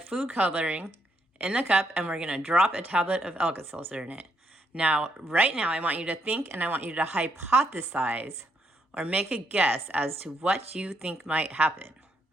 coloring in the cup, and we're going to drop a tablet of Alka-Seltzer in it. Now, right now, I want you to think and I want you to hypothesize or make a guess as to what you think might happen.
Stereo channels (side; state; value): both; normal; correlation 0.75